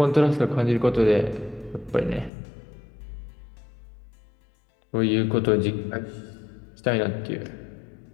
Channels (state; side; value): drops out; right; at 2.3 s